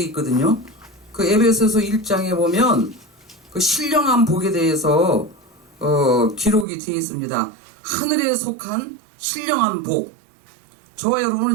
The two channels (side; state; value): left; drops out; at 6.7 s